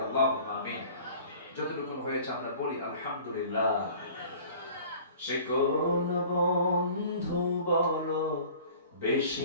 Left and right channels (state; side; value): inverted; both; correlation -0.47